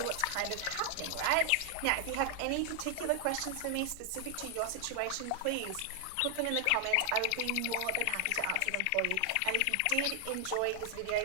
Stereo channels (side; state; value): both; different; correlation 0.00